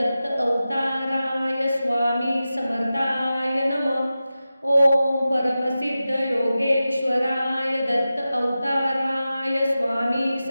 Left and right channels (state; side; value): inverted; both; correlation -0.94